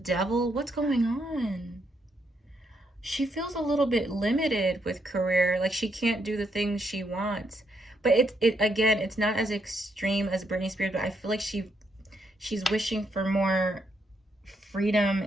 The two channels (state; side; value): normal; both; correlation 0.77